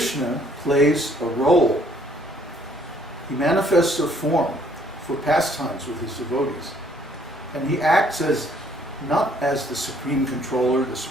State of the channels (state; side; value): normal; both; correlation 0.63